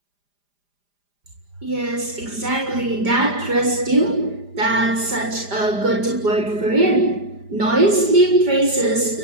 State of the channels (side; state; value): left; late; 4.9 ms